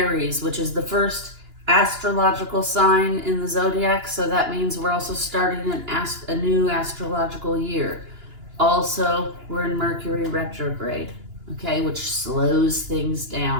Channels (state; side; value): late; left; 2.9 ms